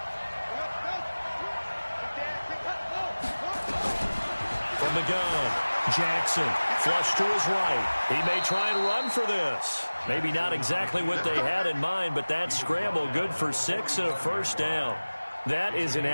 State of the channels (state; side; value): inverted; both; correlation -1.00